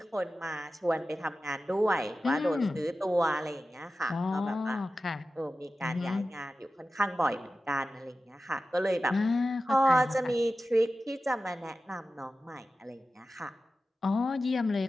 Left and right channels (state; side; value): normal; both; correlation 0.94